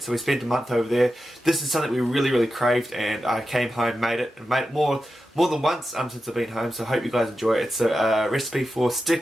So we spent a month over there. This is something we really craved, and I came home, made it, and made it more than once since I've been home. So I hope you guys enjoy it. It's a recipe for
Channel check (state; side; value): normal; both; correlation 0.91